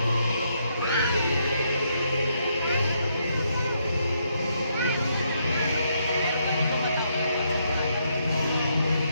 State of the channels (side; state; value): both; inverted; correlation -0.75